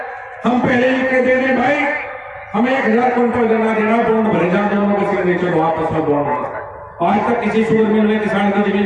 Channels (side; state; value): both; identical; correlation 1.00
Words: हम पहले लिख के दे दें भाई हमें 1000 क्विंटल गन्ना देना, बॉन्ड भरे जाए, दोनों के सिग्नेचर आपस में बॉन्ड। आज तक किसी शुगर मिल में किसान की